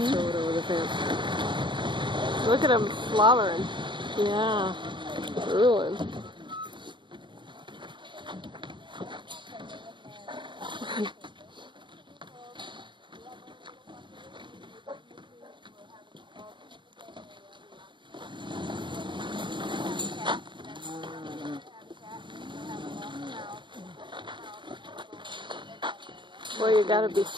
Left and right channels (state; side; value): late; left; 0.23 ms